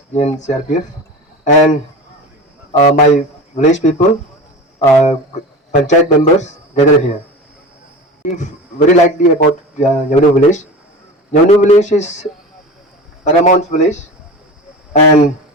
BN CRPF, and my village people, panchayat members gathered here. Very likely about Nyavnu village. Nyavnu village is paramount village, and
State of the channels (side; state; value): both; normal; correlation 0.31